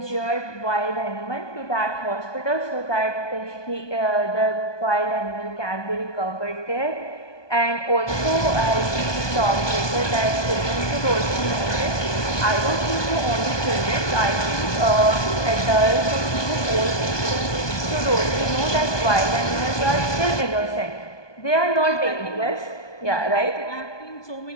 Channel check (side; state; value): right; late; 1.2 ms